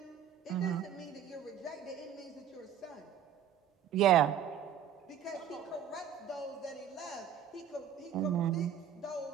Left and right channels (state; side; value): quieter; left; 8.8 dB